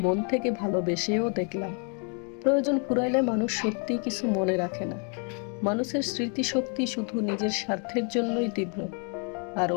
মন থেকে ভালোবেসেও দেখলাম। প্রয়োজন ফুরাইলে মানুষ সত্যিই কিছু মনে রাখে না। মানুষের স্মৃতিশক্তি শুধু নিজের স্বার্থের জন্যই তীব্র, আর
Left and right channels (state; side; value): quieter; right; 39.0 dB